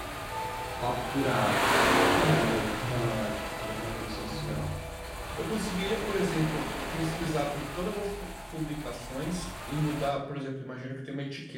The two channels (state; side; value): identical; both; correlation 1.00